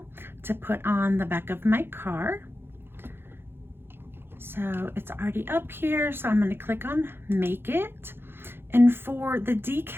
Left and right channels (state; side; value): late; left; 0.11 ms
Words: to put on the back of my car. So it's already up here, so I'm going to click on make it. And for the